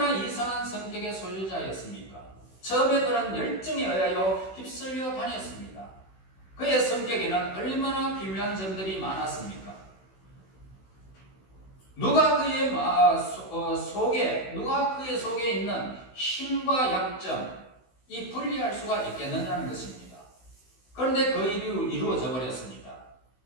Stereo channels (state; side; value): late; right; 16 ms